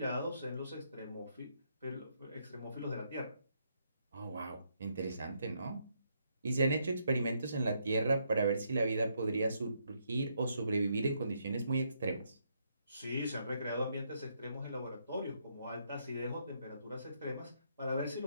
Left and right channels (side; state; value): both; inverted; correlation -0.75